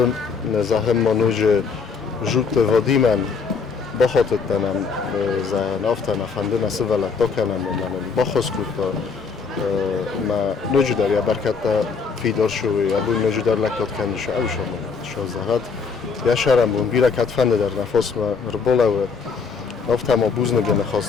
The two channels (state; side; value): quieter; right; 5.3 dB